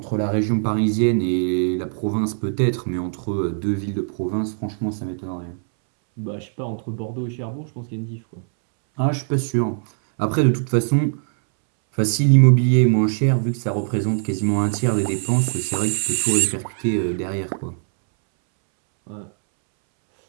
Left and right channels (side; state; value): left; silent; 65 dB below the other